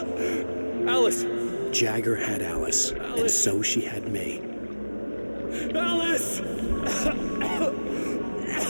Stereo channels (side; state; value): both; inverted; correlation -1.00